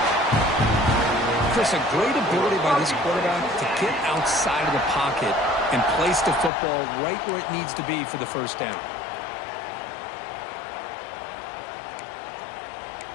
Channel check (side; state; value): right; drops out; at 6.5 s